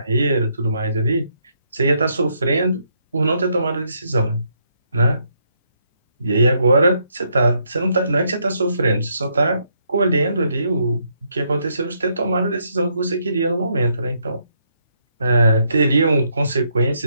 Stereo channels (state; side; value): inverted; both; correlation -0.74